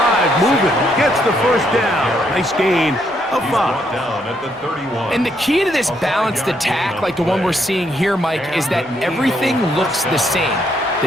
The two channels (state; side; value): normal; both; correlation 0.74